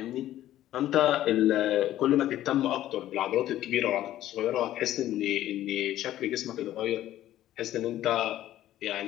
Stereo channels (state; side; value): quieter; right; 13.2 dB